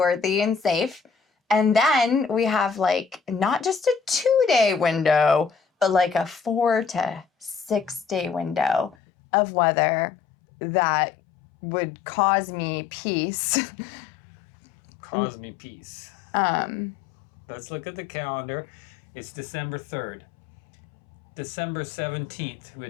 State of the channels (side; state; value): right; drops out; at 9.0 s